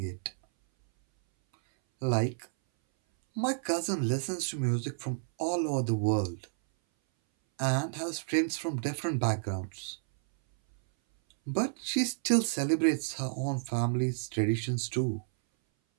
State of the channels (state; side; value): silent; left; 57 dB below the other